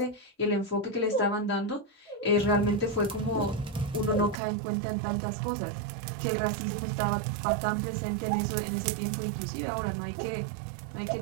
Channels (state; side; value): drops out; left; at 4.4 s